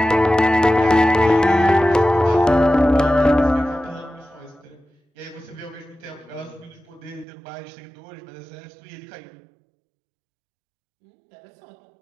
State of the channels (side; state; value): left; drops out; at 7.2 s